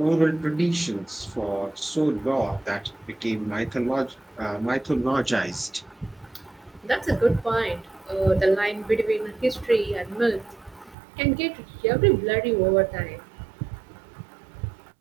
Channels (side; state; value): left; drops out; at 11.0 s